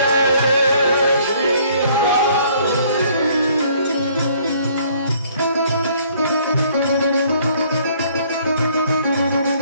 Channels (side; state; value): both; inverted; correlation -0.61